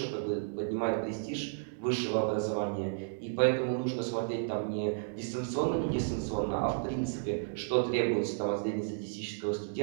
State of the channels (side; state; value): left; silent; digital silence